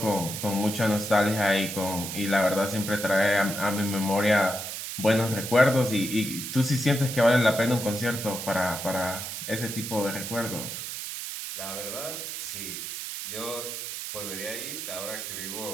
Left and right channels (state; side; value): noise; right; hiss, 6 dB below the sound